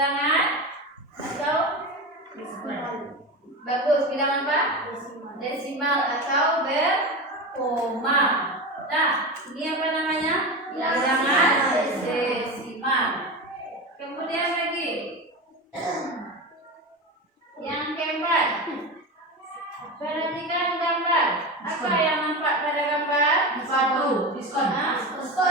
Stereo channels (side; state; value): both; normal; correlation 0.23